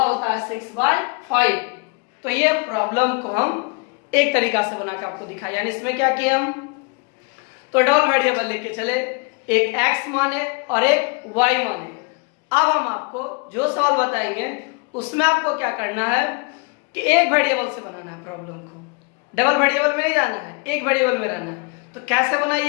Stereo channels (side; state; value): right; quieter; 33.2 dB